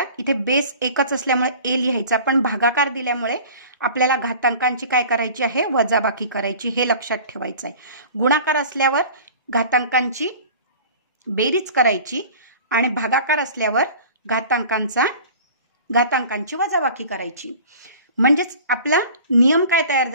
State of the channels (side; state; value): both; inverted; correlation -0.43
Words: इथे बेस एकच असल्यामुळे a लिहायचा, पण भागाकार दिल्यामुळे आपल्याला घातांकांची काय करायची आहे, वजाबाकी करायची, हे लक्षात ठेवायचं आहे. गुणाकार असल्यावर घातांकांची बेरीज करायची आणि भागाकार असल्यावर घातांकांची वजाबाकी करायची. म्हणजेच आपला नियम काय तयार